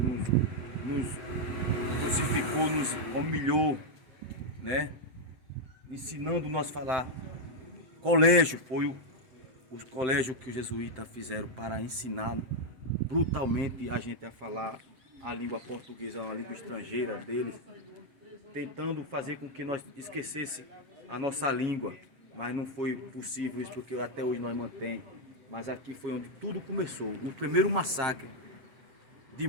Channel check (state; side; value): late; left; 7.8 ms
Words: nos crucificou, nos humilhou, né? Ensinando nós a falar. Colégio foi os colégios que os jesuítas fizeram para ensinar brutalmente a gente a falar a língua portuguesa, uma língua estrangeira deles, tentando fazer com que nós esquecesse a nossa língua, mas não foi possível isso, porque até hoje nós mantém. Mas aqui foi onde tudo começou, o primeiro massacre de